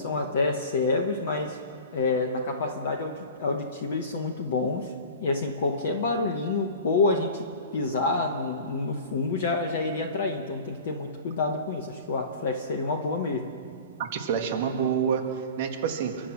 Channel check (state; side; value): inverted; both; correlation -0.38